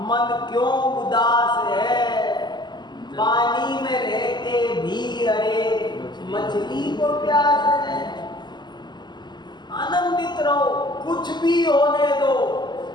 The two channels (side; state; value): right; late; 0.21 ms